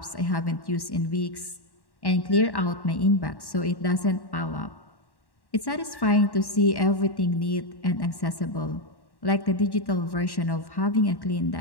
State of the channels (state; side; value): late; right; 1.1 ms